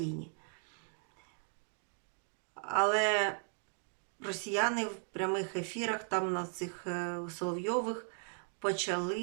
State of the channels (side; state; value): left; silent; 53 dB below the other